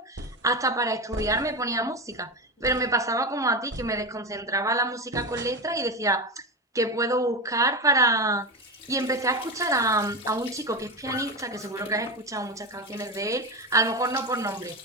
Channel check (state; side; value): normal; both; correlation 0.18